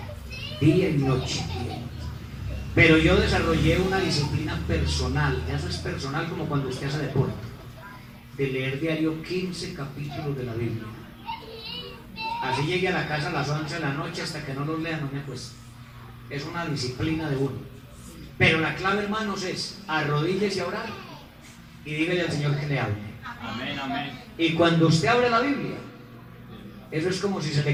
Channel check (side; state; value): both; identical; correlation 1.00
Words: día y noche. Pero yo desarrollé una disciplina personal. Eso es personal, como cuando usted hace deporte, de leer diario 15 capítulos de la Biblia. Así llegué a la casa a las 11 de la noche, hasta que no los lea no me acuesto. Es una disciplina de uno. Pero la clave, hermanos, es arrodíllese a orar y dígale al Señor que le hable. Amén, amén. Y cuando usted abre la Biblia, eso es como si se